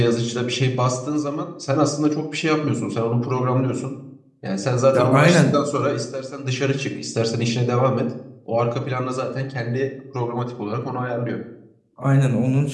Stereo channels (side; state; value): both; identical; correlation 1.00